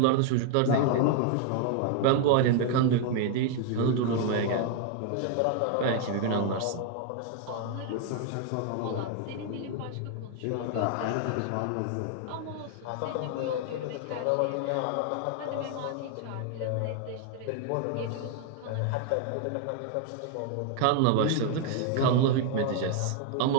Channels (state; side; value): different; both; correlation 0.00